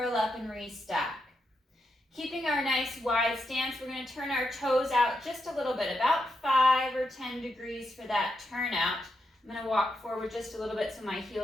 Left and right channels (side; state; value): both; normal; correlation 0.83